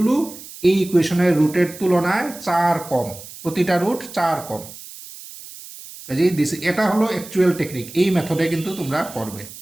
এই ইকুয়েশনের রুটের তুলনায় 4 কম, প্রতিটা রুট 4 কম। কাজেই এটা হলো অ্যাকচুয়াল টেকনিক। এই মেথডে কিন্তু তোমরা করবে,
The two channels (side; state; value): right; noise; hiss, 15 dB below the sound